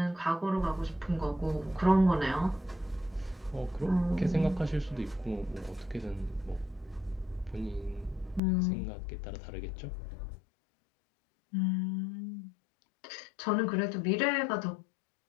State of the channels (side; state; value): right; drops out; at 8.4 s